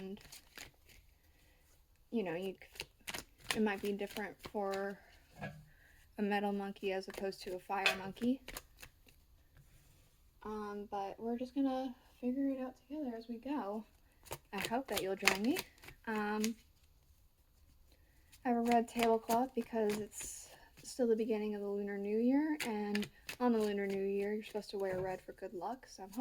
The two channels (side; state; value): both; identical; correlation 1.00